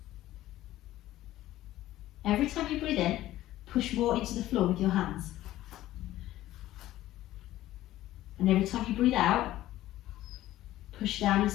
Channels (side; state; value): right; quieter; 14.8 dB